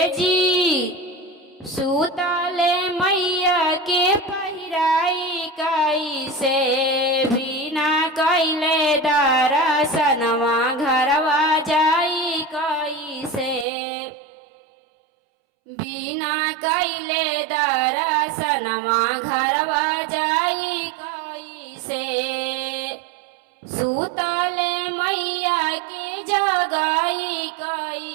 जी सूतले मैया के पहिराई कैसे बिना कैले दर्शनवा घरवा जाई कैसे बिना कैले दर्शनवा घरवा जाई कैसे सूतले मैया के जगाई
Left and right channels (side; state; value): left; drops out; at 13.7 s